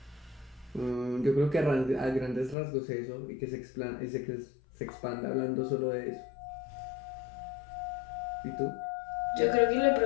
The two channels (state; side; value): drops out; right; at 2.6 s